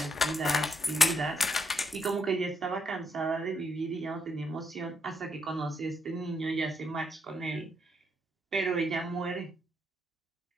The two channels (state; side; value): normal; both; correlation 0.77